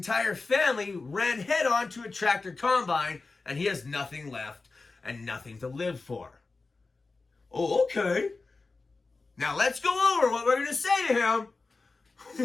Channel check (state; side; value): quieter; right; 3.8 dB